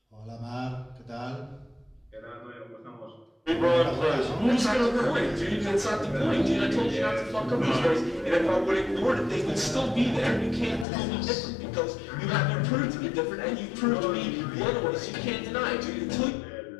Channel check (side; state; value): right; drops out; at 10.9 s